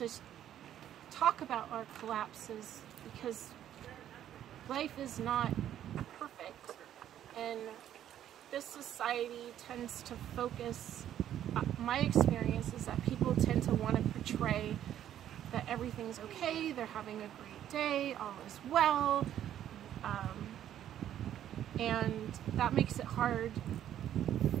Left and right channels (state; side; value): quieter; left; 11.1 dB